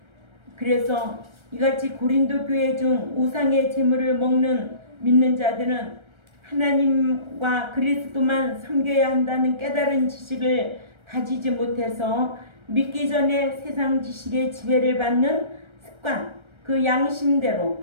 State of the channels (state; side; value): late; left; 1.3 ms